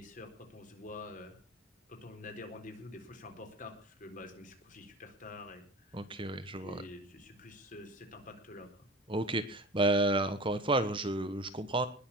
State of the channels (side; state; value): both; normal; correlation 0.36